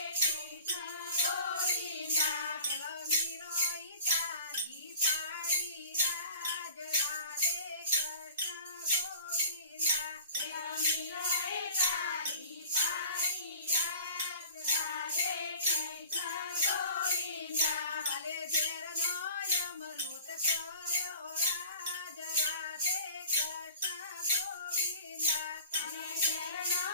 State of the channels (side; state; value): both; inverted; correlation -0.44